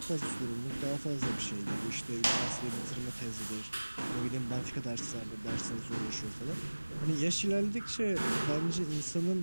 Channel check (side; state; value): both; inverted; correlation -1.00